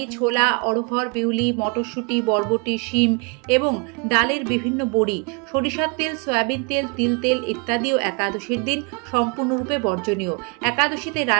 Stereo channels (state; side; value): quieter; left; 32.9 dB